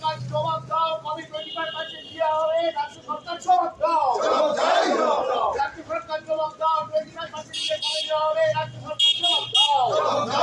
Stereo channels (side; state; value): both; identical; correlation 1.00